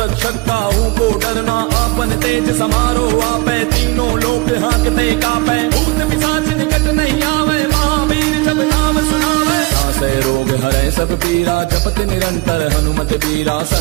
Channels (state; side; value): quieter; left; 24.4 dB